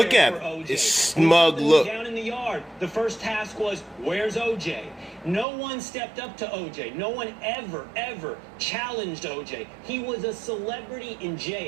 at him. His smug look. Down in the yard. The first task was, where's OJ? No one stepped up to OJ. No one ever challenged OJ. He was a celebrity in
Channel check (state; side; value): drops out; left; at 5.5 s